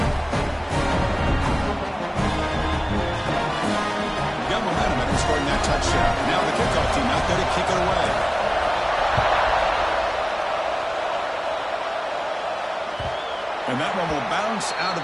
Scoring that touchdown. Now the kickoff team out there to kick it away. And that one will bounce out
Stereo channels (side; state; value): both; identical; correlation 1.00